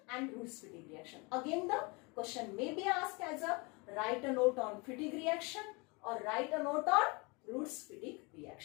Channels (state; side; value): quieter; right; 28.6 dB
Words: and Roots-Fittig reaction. Again the question may be asked as a write a note on Fittig reaction or write a note on Roots-Fittig